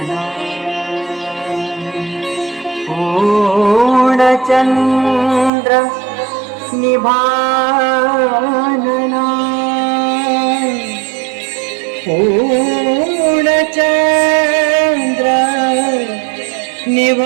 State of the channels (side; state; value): left; drops out; at 5.5 s